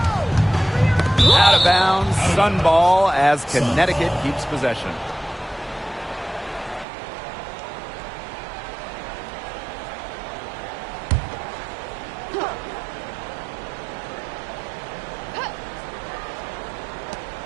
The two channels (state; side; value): drops out; left; at 6.9 s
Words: Out of bounds. Sun ball as Connecticut keeps possession.